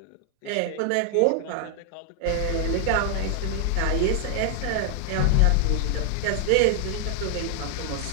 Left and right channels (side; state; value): both; different; correlation 0.00